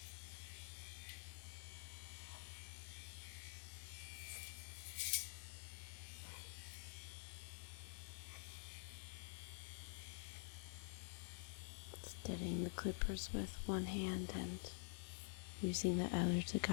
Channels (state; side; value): silent; right; digital silence